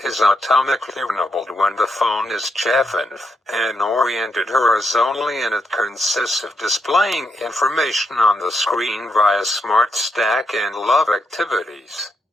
is automatically enabled when the phone is chafing and oriented horizontally, and it consists of displaying information on the screen via Smart Stack and Love Activities.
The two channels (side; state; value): both; normal; correlation 0.79